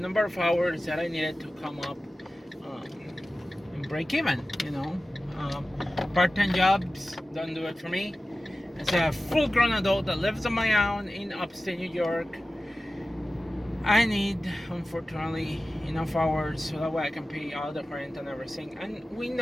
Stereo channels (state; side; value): normal; both; correlation 0.95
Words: of hours that I needed to come up and break even. Part-time jobs don't do it for me. As a full-grown adult that lives on my own in upstate New York, I need, unfortunately, enough hours so that way I can pay all the rent and everything. And we